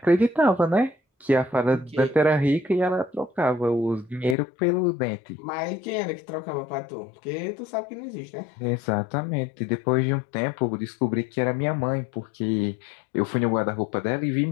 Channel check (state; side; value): drops out; right; at 4.4 s